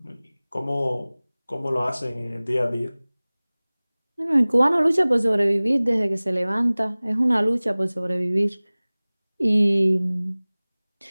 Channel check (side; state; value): both; inverted; correlation -1.00